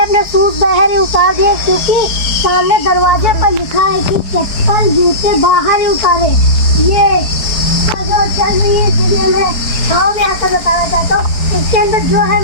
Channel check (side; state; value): right; late; 4.6 ms